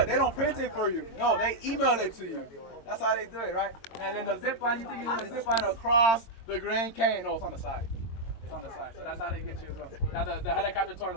They don't print it for you. No, they email it to you. That's how they do it, right? And then the zip line, you think you're gonna zip line across the Grand Canyon? No, it's on the side. It's on the side, so that's how they get you as well. Now the helicopter tour, a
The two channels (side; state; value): right; late; 22 ms